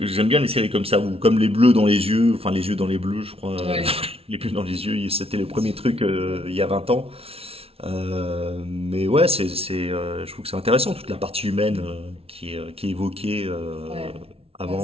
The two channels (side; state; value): left; late; 0.28 ms